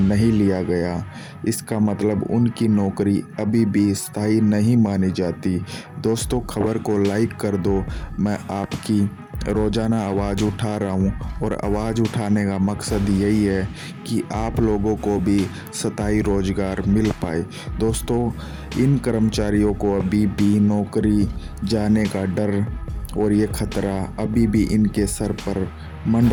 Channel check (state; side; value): identical; both; correlation 1.00